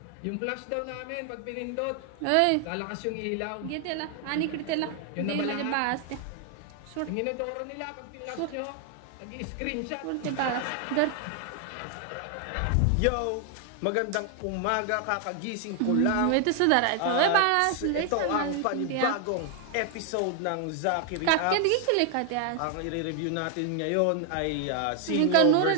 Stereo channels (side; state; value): both; different; correlation 0.00